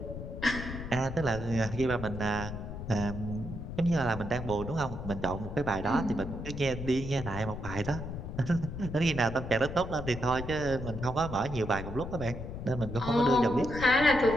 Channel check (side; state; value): left; noise; rumble, 7 dB below the sound